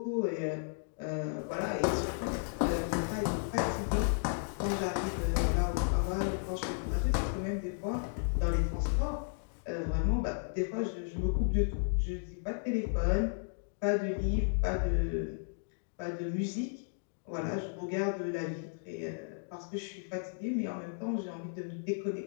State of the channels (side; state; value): right; silent; digital silence